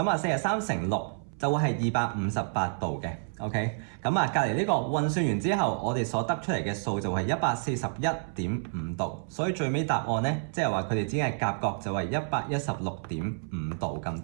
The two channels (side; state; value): left; silent; 59 dB below the other